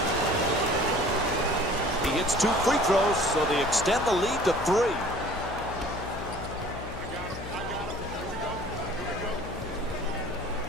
He hits 2 free throws, so they extend the lead to 3.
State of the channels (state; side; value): noise; left; hum, 10 dB below the sound